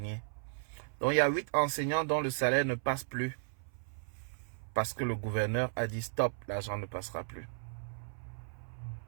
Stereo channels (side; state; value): left; silent; 54 dB below the other